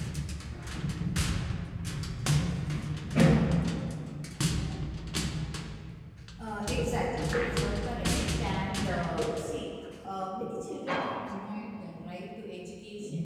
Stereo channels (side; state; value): both; identical; correlation 1.00